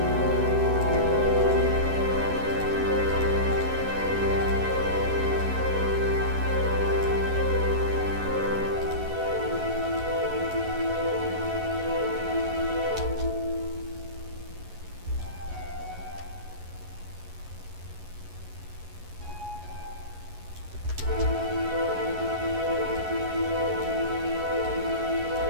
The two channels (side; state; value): left; late; 11 ms